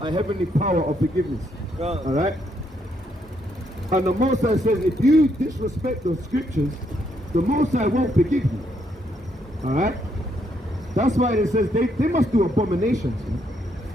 heavenly power of forgiveness. Alright? And the Most High says, if you disrespect the scriptures, the Most High won't forgive you. Alright? That's why it says they must do abominations. Man.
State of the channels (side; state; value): both; normal; correlation 0.74